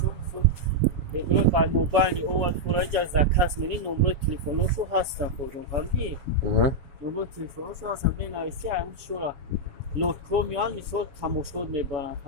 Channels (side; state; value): left; late; 7.1 ms